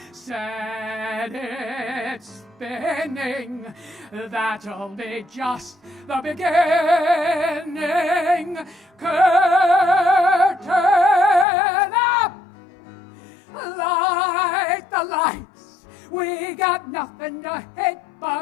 Set it spinning. That'll be just the beginning. Curtain up! Light the lights. We got nothing to hit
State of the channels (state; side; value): drops out; right; at 11.5 s